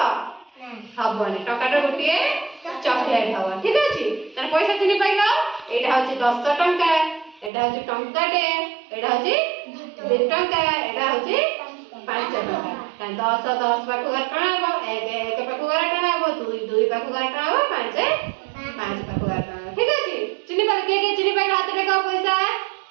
ହବନି। ଟଙ୍କାଟାରେ ଗୋଟିଏ ଚକଲେଟ ହବ। ଠିକ ଅଛି? ତାହେଲେ ପଇସା ଚିହ୍ନି ପାଇଲ? ଏଇଟା ହଉଛି 10 ଟଙ୍କା, ଏଇଟା ହଉଛି ଟଙ୍କାଟେ, ଏଇଟା ହଉଛି 2 ଟଙ୍କା, ଏଇଟା ହଉଛି 5 ଟଙ୍କା। ତାହେଲେ 10 10 ପାଖକୁ ଗାର ଟଣା ହବ, 1 ପାଖକୁ ଗାର ଟଣା ହବ, 2 ପାଖକୁ ଗାର ଟଣା ହବ, 5 ପାଖକୁ ଗାର ଟଣା ହବ। ଠିକ ଅଛି? ଚିହ୍ନି ପାଇଲ? କିଏ କିଏ ଚିହ୍ନି ପାଇଲ? ହାତ ଦେଖାଅ ପଇସା।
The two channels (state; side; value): drops out; left; at 7.5 s